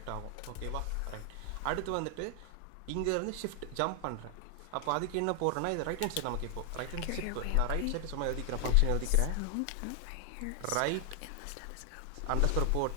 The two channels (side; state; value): both; different; correlation 0.00